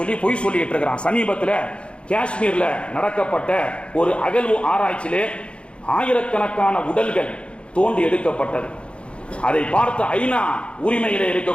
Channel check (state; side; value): late; right; 0.058 ms